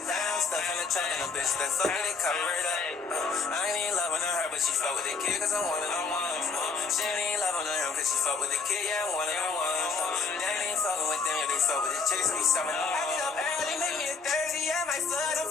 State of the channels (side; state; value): right; quieter; 4.6 dB